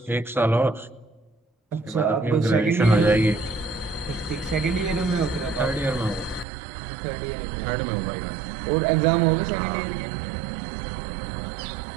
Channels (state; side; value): drops out; left; at 6.5 s